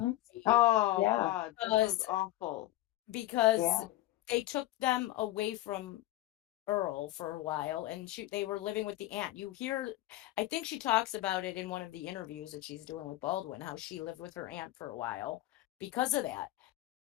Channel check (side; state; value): right; quieter; 16.0 dB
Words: Oh, yeah. God, that was awful. Because they took them away from Earl for a while, and they were living with the aunt. I think she talks about it in one of the interviews that she's doing with Baldwin, how she lived with her aunt for a while because of that.